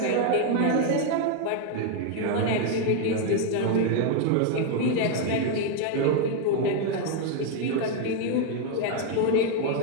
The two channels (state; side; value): different; both; correlation 0.01